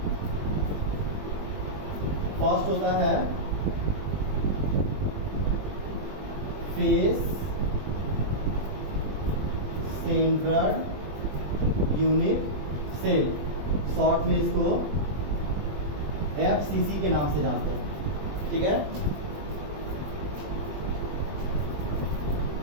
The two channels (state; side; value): late; left; 20 ms